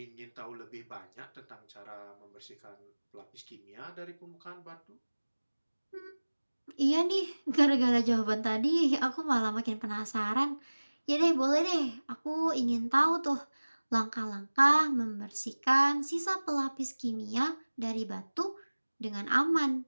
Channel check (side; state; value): both; inverted; correlation -1.00